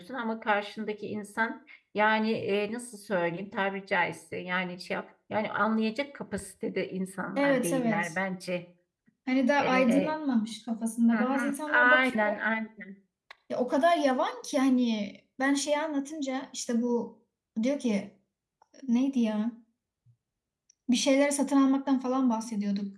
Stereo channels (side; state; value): both; identical; correlation 1.00